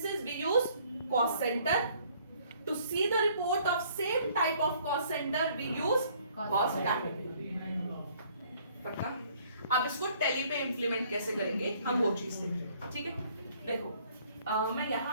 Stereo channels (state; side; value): inverted; both; correlation -0.61